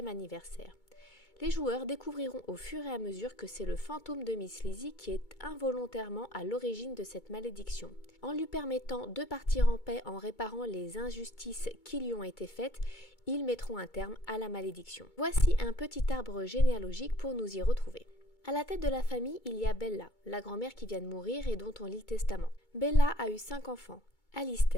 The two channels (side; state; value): right; late; 2.2 ms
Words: anniversaire. Les joueurs découvriront au fur et à mesure que c'est le fantôme de Miss Lizzie qui est involontairement à l'origine de cette malédiction. En lui permettant de partir en paix en réparant les injustices qui lui ont été faites, ils mettront un terme à la malédiction. Voici un petit arbre généalogique pour nous y retrouver. À la tête de la famille, il y a Bella, la grand-mère qui vient de mourir et dont on lit le testament. Bella a eu 5 enfants.